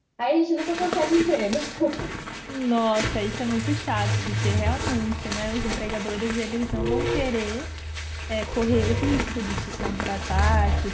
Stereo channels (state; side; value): identical; both; correlation 1.00